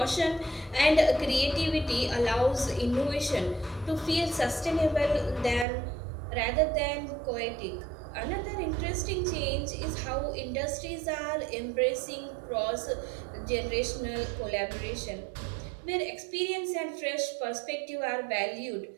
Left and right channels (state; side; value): drops out; left; at 5.7 s